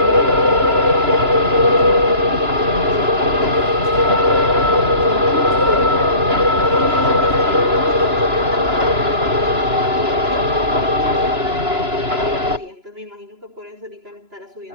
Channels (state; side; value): late; left; 2.9 ms